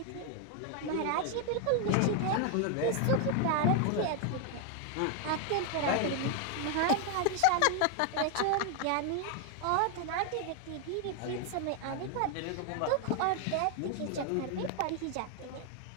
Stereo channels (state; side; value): different; both; correlation 0.00